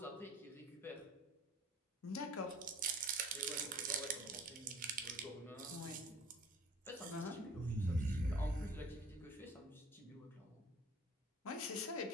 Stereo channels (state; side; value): normal; both; correlation 0.49